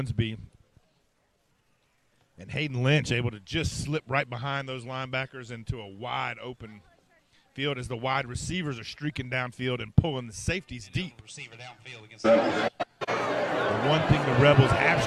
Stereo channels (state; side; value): identical; both; correlation 1.00